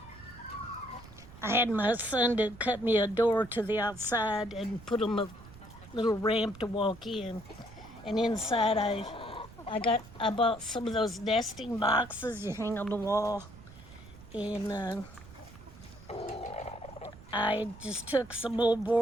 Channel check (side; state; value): right; noise; rumble, 18 dB below the sound